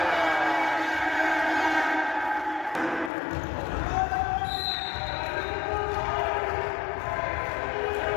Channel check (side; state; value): right; drops out; at 3.1 s